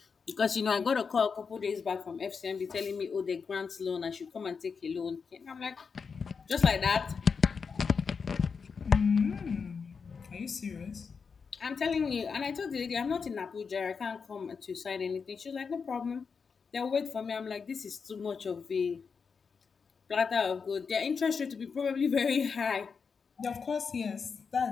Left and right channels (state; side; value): quieter; right; 5.6 dB